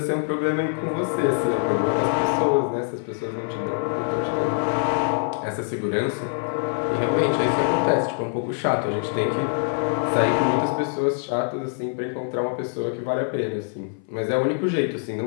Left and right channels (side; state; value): right; silent; 59 dB below the other